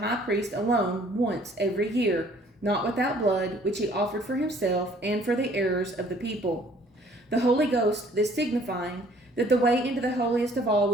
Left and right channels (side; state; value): both; normal; correlation 0.57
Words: priest alone once every year, not without blood, which he offered for himself and for the errors of the people. The Holy Ghost this signifying, that the way into the holiest of all